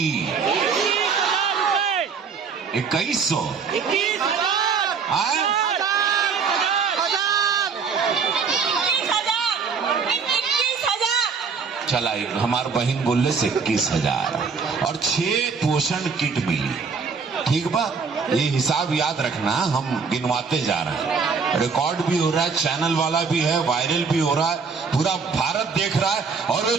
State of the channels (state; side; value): quieter; left; 5.4 dB